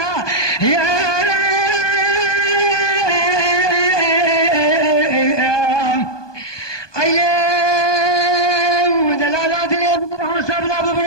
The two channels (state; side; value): late; right; 1.2 ms